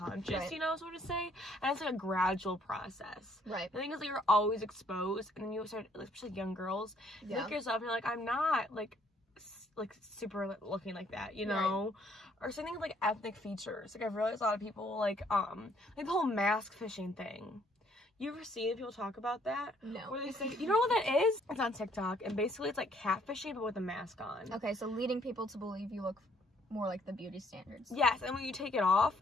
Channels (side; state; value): both; normal; correlation 0.65